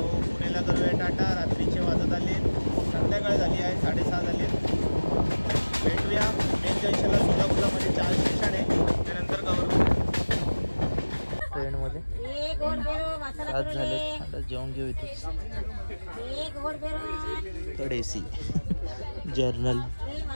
पुणेला करूया टाटा. रात्रीचे वाजत आले, संध्याकाळ झाली आहे, 6:30 झाले. भेटूया मेन जंक्शनला. सोलापूरला मध्ये 4 स्टेशन आहे, त्यानंतर कवर करू ट्रेनमध्ये. आज झाले, आता जेवण घेऊ इथे. Third AC journal.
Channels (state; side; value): inverted; both; correlation -1.00